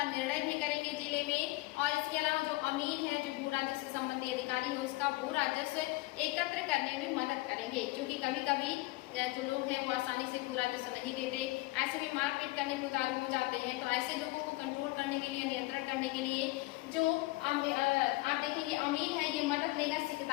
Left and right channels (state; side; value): quieter; right; 21.0 dB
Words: निर्णय भी करेंगे जिले में। और इसके अलावा जो अमीर है जो भू राजस्व संबंधी अधिकारी है उसका भू राजस्व एकत्र करने में मदद करेंगे। क्योंकि कभी कभी जो लोग हैं वो आसानी से भू राजस्व नहीं देते, ऐसे में मारपीट करने को उतारू हो जाते हैं। तो ऐसे लोगों को कंट्रोल करने के लिए, नियंत्रण करने के लिए जो आप देखेंगे अमीन है, ये मदद लेगा